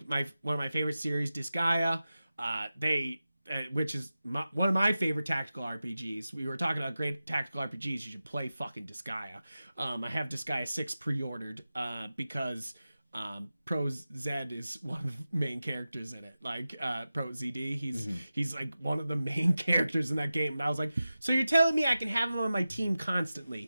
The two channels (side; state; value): both; inverted; correlation -0.94